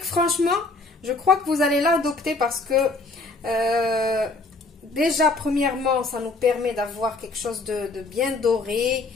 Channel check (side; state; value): right; quieter; 3.4 dB